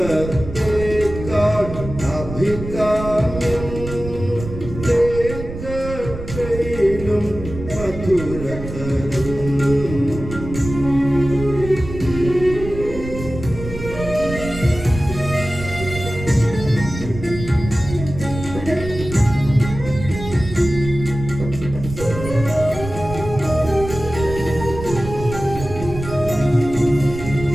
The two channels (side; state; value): right; noise; rumble, 9 dB below the sound